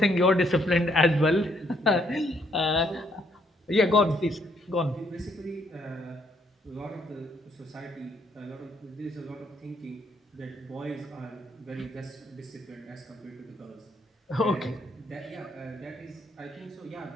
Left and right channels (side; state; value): both; normal; correlation 0.70